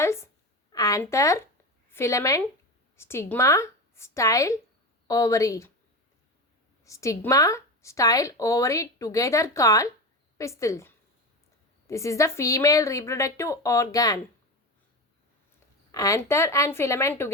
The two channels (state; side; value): normal; both; correlation 0.22